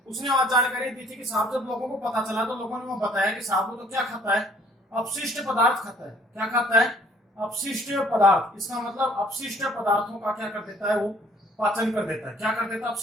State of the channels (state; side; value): normal; both; correlation 0.58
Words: उसने वहां जानकारी दी थी कि साहब जब लोगों को पता चला तो लोगों ने वहां बताया कि साहब वो तो क्या खाता है? अपशिष्ट पदार्थ खाता है। क्या खाता है? अपशिष्ट पदार्थ। इसका मतलब अपशिष्ट पदार्थों का क्या कर देता है? वो पाचन कर देता है। क्या कर देता है?